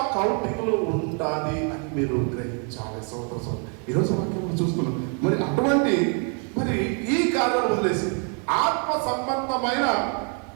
కౌంటింగ్లో ఉంటుంది అని మీరు గ్రహించాలి. సోదరు ఈరోజు వాక్యం చూస్తున్నాం. మరి అటువంటి ఈ కార్యాలు వదిలేసి ఆత్మ సంబంధమైన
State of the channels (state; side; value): quieter; left; 39.9 dB